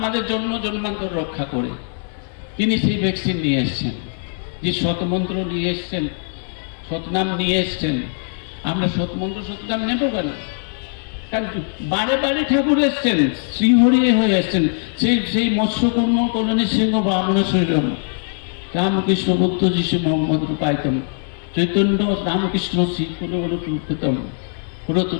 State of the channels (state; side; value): silent; right; 61 dB below the other